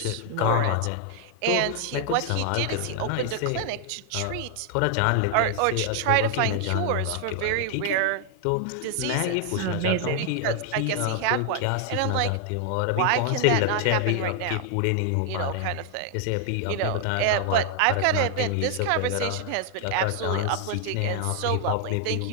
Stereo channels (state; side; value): different; both; correlation 0.00